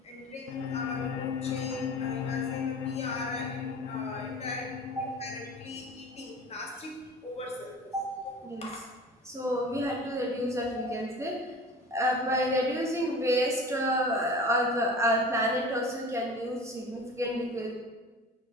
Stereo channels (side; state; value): both; normal; correlation 0.39